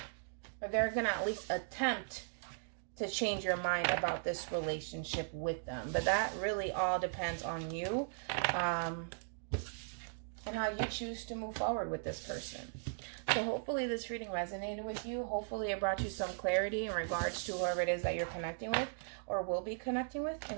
Or they're going to at least attempt to change your mind about this relationship with them. But that really all depends on you. And how you choose to move forward with this person. So hopefully this reading resonated with you. Hopefully it brought you some clarity in regards to whoever it is that you're connecting with or will be connecting with.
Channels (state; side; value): silent; left; digital silence